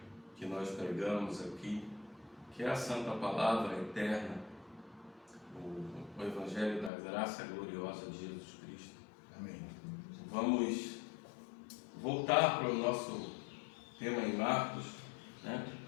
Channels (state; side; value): drops out; right; at 6.9 s